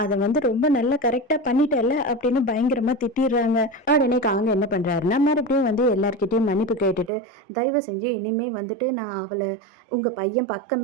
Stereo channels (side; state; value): left; drops out; at 7.1 s